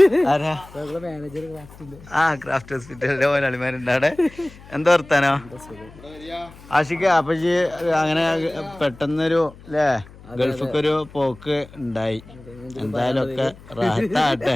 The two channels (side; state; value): left; noise; hum, 21 dB below the sound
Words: ആരാ മാനേജർ ആ ക്രാഫ്റ്റ് ഹോസ്പിറ്റലിന്റെ മുതലാളിമാരുണ്ട് അവിടെ. എന്താ വർത്താനോ ആഷിക? അപ്പൊ അങ്ങനെ പെട്ടെന്നൊരു അല്ലേ ഗൾഫിക്കൊരു പോക്ക് ഉണ്ടായി. എന്തായാലും ഒക്കെ റാഹത്താകട്ടെ